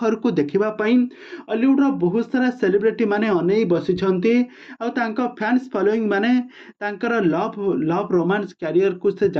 को देखिबा पई हॉलीवुड रो बहुत सारा सेलिब्रिटी माने अनेई बसिछंती। आ तांका फैंस फॉलोइंग माने तांकर लव रोमांस कैरियर को से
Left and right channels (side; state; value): both; identical; correlation 1.00